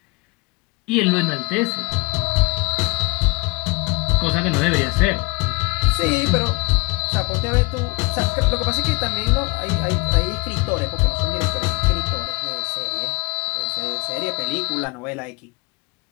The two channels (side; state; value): right; quieter; 27.6 dB